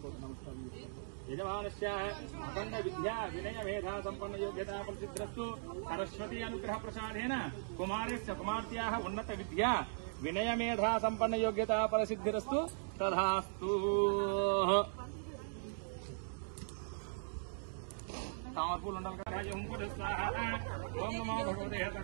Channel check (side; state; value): left; silent; digital silence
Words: యజమానస్య అఖండ విద్యా వినయ మేధా సంపన్న యోగ్యతా ప్రసిద్ధిరస్తు సరస్వతి అనుగ్రహ ప్రసాదేన కుమారస్య కుమార్తెయాః ఉన్నత విద్యా వినయ మేధా సంపన్న యోగ్యతా ప్రసిద్ధిరస్తు తథాస్తు तामरपूल मंडल का राज ओम नमो भगवते